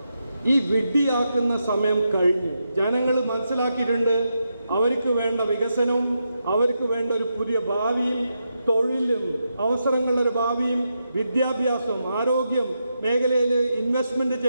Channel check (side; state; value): both; inverted; correlation -0.85